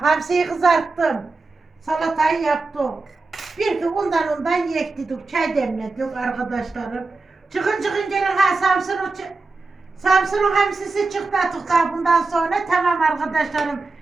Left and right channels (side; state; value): left; quieter; 3.7 dB